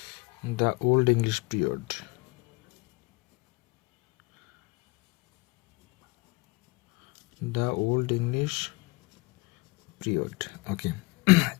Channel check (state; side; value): quieter; right; 23.7 dB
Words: the old English period. The old English period, okay.